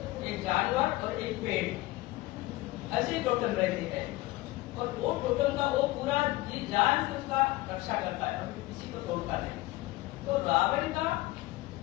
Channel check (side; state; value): right; quieter; 19.3 dB